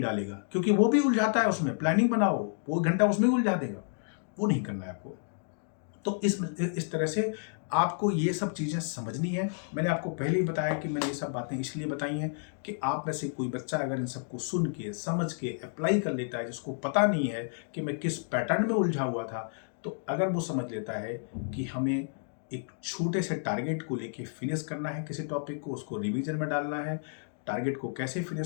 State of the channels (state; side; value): silent; right; digital silence